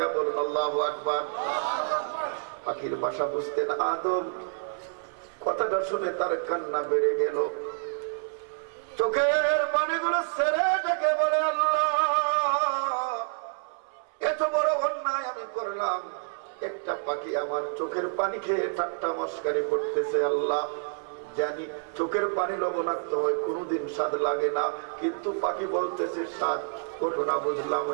বলুন আল্লাহু আকবার। পাখির ভাষা বুঝতেন আদম, কথাটা শুনে তার কান্না বেড়ে গেল, চোখের পানিগুলো ছেড়ে ডেকে বলে, আল্লাহ এত বড় অন্যায় আমি করলাম, একটা পাখি আমার চোখের পানি খেয়ে ঠাট্টা মস্কারি করতেছে। আল্লাহ জানি চোখের পানি লবণাক্ত হয়, কোনোদিন স্বাদ লাগে না, কিন্তু পাখি বলতেছে স্বাদ, ঘটনা বুঝলাম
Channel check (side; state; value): left; silent; 59 dB below the other